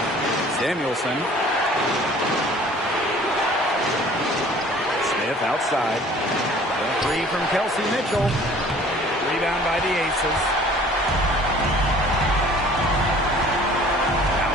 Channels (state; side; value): normal; both; correlation 0.51